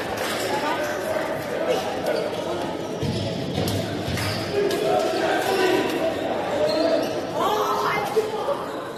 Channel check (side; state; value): both; identical; correlation 1.00